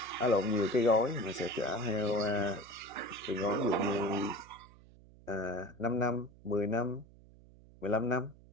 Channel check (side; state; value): right; noise; hum, 23 dB below the sound